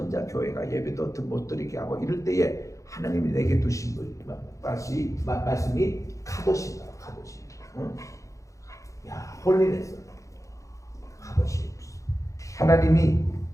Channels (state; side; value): late; right; 0.15 ms